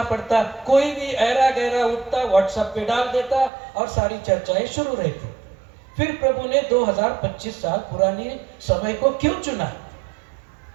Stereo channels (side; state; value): left; drops out; at 3.5 s